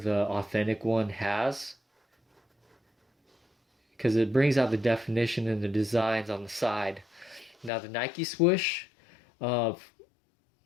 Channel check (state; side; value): drops out; right; at 7.7 s